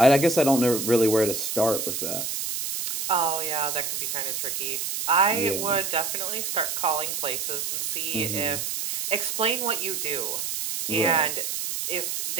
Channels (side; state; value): right; noise; hiss, 3 dB below the sound